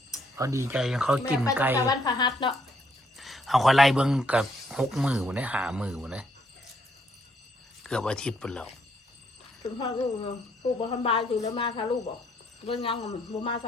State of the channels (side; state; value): both; normal; correlation 0.70